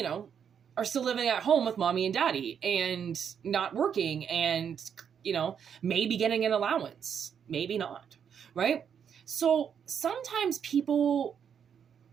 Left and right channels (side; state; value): left; quieter; 7.8 dB